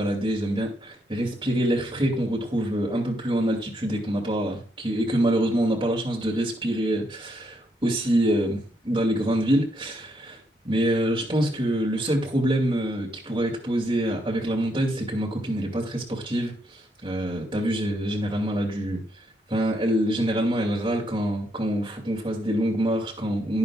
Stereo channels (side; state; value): both; normal; correlation 0.77